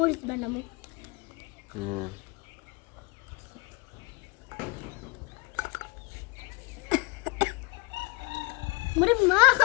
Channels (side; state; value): right; quieter; 26.6 dB